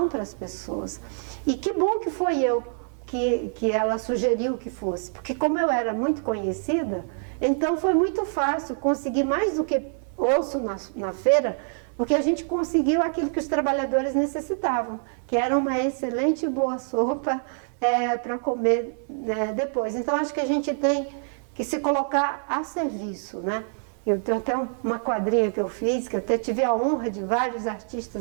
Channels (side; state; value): left; silent; 61 dB below the other